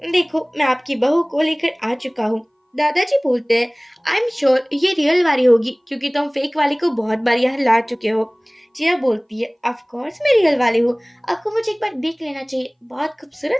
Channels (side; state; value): both; identical; correlation 1.00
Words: देखो मैं आपकी बहू को लेकर आ चुका हूँ। दादाजी बोलते हैं आई एम श्योर ये रियल वाली होगी, क्योंकि तुम फेक वाली को बहुत बार यहाँ ला चुके हो। जिया बोलती है ऑफ कोर्स मैं रियल वाली हूँ, आपको मुझे एक बार देख लेना चाहिए, बहुत